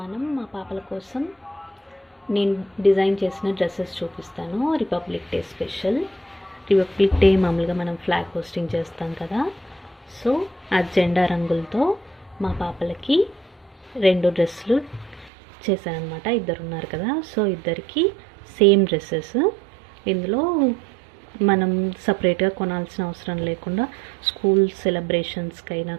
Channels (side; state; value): left; drops out; at 15.3 s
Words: మనం మా పాపల కోసం నేను డిజైన్ చేసిన డ్రెస్సెస్ చూపిస్తాను. Republic day special. Republic day మామూలుగా మనం ఫ్లాగ్ హోస్టింగ్ చేస్తాం కదా, సో ఆ జెండా రంగులతో మా పాపలకి 2 డ్రెస్సులు చేశానమాట. ఇద్దరు ఉన్నారు కదా, సో ఇద్దరికి సేమ్ డ్రెస్సెస్. ఇందులో మనం సపరేట్గా కొనాల్సిన అవసరం లేకుండా స్కూల్ సెలబ్రేషన్స్కి అయినా